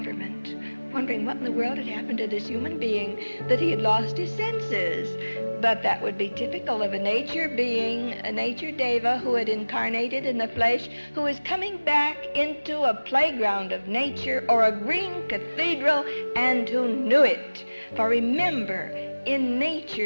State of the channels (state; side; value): inverted; both; correlation -1.00